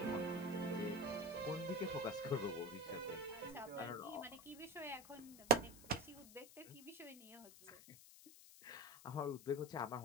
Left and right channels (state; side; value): noise; left; hiss, 17 dB below the sound